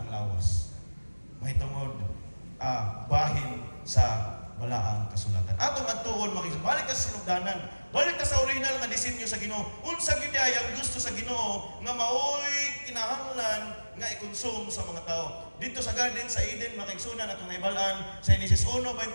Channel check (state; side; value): inverted; both; correlation -1.00